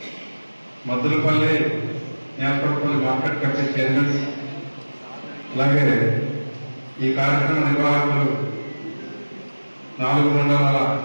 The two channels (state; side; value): inverted; both; correlation -1.00